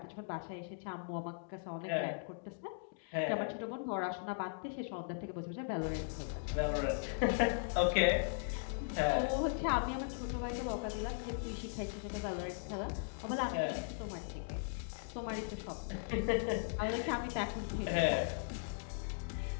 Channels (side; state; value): right; silent; digital silence